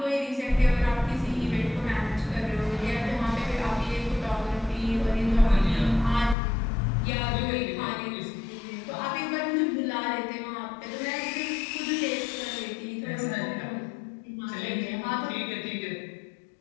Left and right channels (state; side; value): drops out; right; at 6.4 s